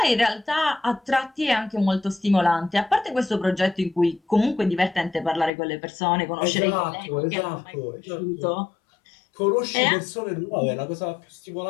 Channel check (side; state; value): right; drops out; at 5.5 s